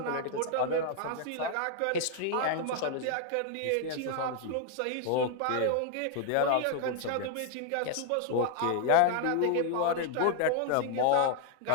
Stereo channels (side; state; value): both; different; correlation 0.00